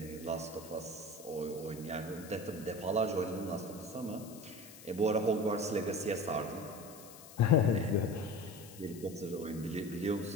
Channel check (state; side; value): noise; left; hiss, 18 dB below the sound